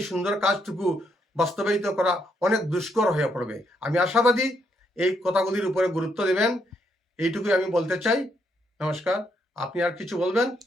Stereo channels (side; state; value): both; normal; correlation 0.75